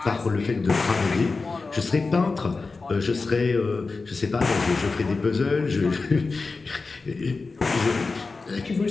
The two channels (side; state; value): right; quieter; 4.0 dB